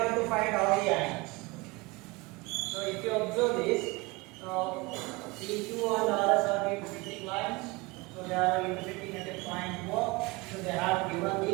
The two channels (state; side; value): quieter; left; 24.4 dB